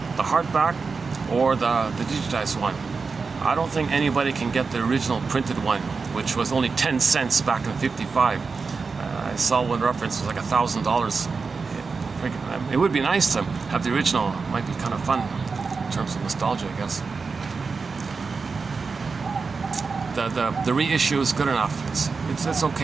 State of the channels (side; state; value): left; quieter; 4.7 dB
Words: the hardback or the digitized one. I don't think anybody can get the original printed one, which was only 10 cents back in '55. I saw one reference was like $1,000. It would be nice to have the original. It might be kind of fun in terms of nostalgia, I guess. The reissue is good enough. It's